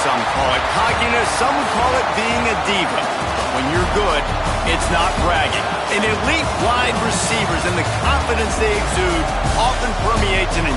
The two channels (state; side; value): identical; both; correlation 1.00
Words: some call it cockiness, some would call it being a diva. But when you're good, it's not bragging. An elite wide receivers and the confidence they exude often permeates an